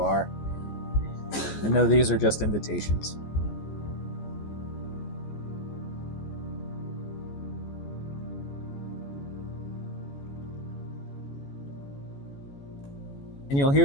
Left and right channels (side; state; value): right; late; 14 ms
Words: And know these are just invitations. And you'll